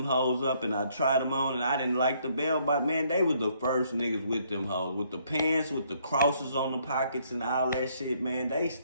hoes up and I tried them on and I didn't like the bell bottom. Man, they was the first niggas with them hoes. With the pants, with the crosses on the pockets and all that shit, man. They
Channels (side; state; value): both; inverted; correlation -0.68